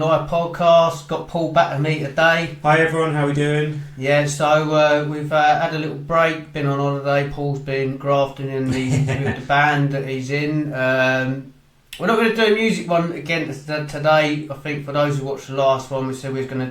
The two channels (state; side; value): identical; both; correlation 1.00